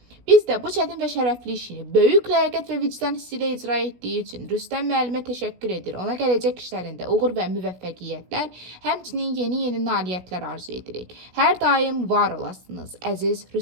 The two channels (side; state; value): left; late; 16 ms